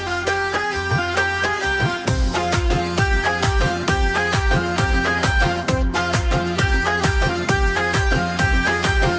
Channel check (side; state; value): both; identical; correlation 1.00